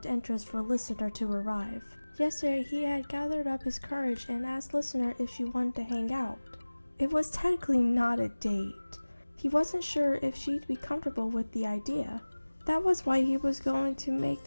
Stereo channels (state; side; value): inverted; both; correlation -1.00